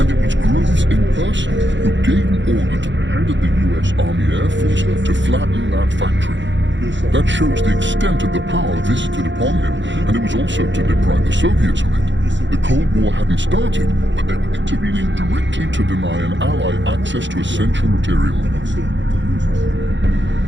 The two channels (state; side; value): late; left; 0.54 ms